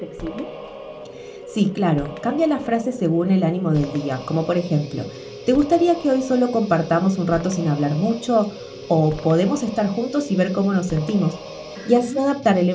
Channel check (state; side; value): identical; both; correlation 1.00